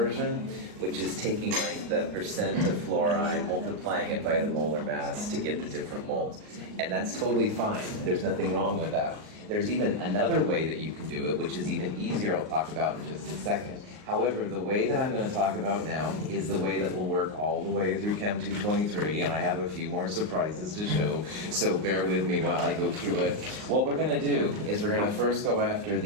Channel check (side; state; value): left; late; 38 ms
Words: which is taking like the percent of fluoride, multiplying it by the molar mass to get the different moles. And that's totally fine. There's nothing wrong with that. There's even another way that you can do it, which is even easier. I'll talk about in just a second. However, the way that I'm going to talk about now is the way that will work all the way through Chem 223, and I have a few more surprises to show, so bear with me while I go through it. What we're going to do is we're going to first go after